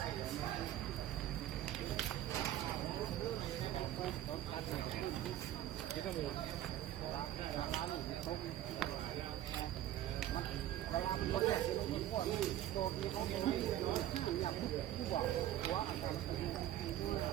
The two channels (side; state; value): left; quieter; 12.8 dB